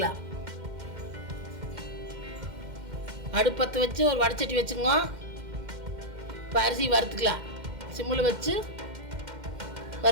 அடுப்பத்தை வச்சு ஒரு வடைச்சட்டி வச்சுங்க. இப்போ அரிசி வறுத்துக்கலாம். சிம்மில் வச்சு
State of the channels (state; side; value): late; left; 2.1 ms